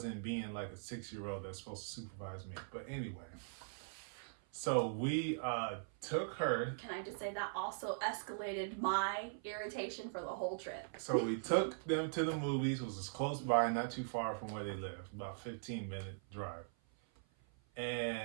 being like a 6-year-old that's supposed to supervise me. But anyway. So we took her. Can I just say that also escalated my irritation for the whole trip? So we took them to the movies. It was just close by, not too far from where they live, about 15-minute drive.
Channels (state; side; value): silent; left; 50 dB below the other